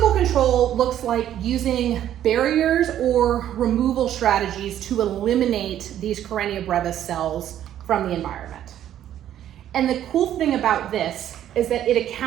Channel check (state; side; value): quieter; left; 11.3 dB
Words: control looks like using barriers or removal strategies to eliminate these Karenia brevis cells from the environment. And the cool thing about this is that it